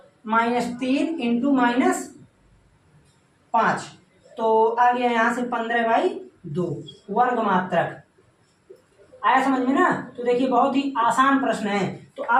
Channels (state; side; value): identical; both; correlation 1.00